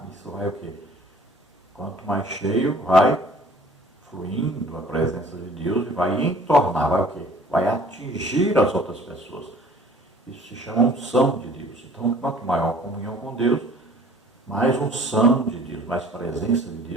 Isso vai o quê? Quanto mais cheio, vai fluindo a presença de Deus e vai entornar, vai o quê? Vai atingir as outras pessoas. Isso se chama unção de Deus. Então, quanto maior a comunhão com Deus, mais unção de Deus, mais presença de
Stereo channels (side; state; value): both; normal; correlation 0.51